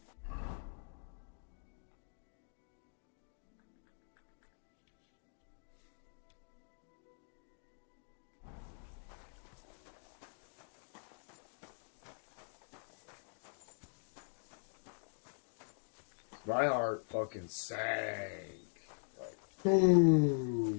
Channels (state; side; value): silent; right; digital silence